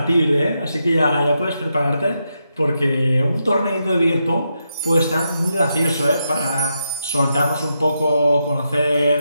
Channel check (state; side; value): inverted; both; correlation -0.84